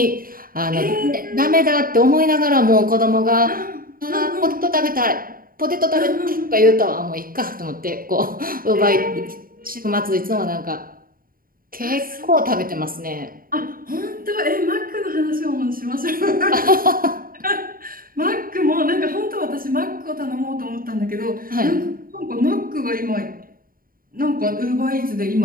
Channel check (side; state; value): left; late; 0.42 ms